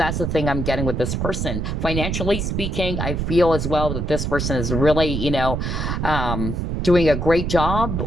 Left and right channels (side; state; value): right; noise; rumble, 2 dB below the sound